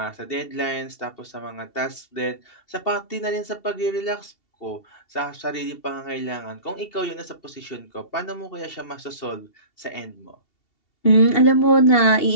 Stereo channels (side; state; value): right; late; 2.7 ms